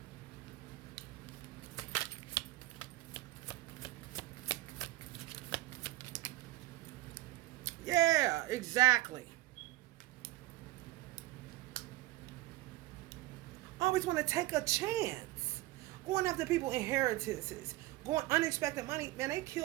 Yeah, exactly. Always want to take a chance. Going after people inheritances. Going unexpected money. Man, they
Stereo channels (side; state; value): left; quieter; 18.0 dB